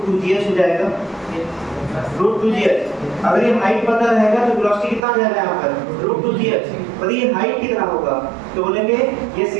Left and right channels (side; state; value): left; drops out; at 5.0 s